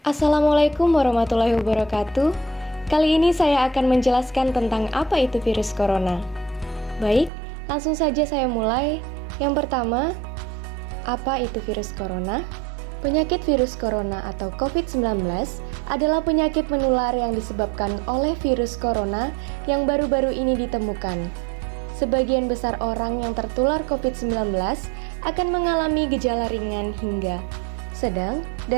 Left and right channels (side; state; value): left; drops out; at 7.3 s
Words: Assalamualaikum warahmatullahi wabarakatuh. Kali ini saya akan menjelaskan tentang apa itu virus corona. Baik, langsung saja saya mulai. Yang pertama, apa itu virus corona? Penyakit virus corona atau COVID-19 adalah penyakit menular yang disebabkan oleh virus corona yang baru-baru ini ditemukan. Sebagian besar orang yang tertular COVID-19 akan mengalami gejala ringan hingga sedang